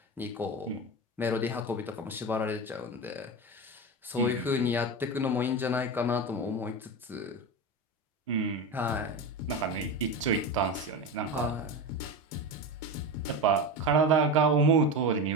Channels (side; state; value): both; normal; correlation 0.22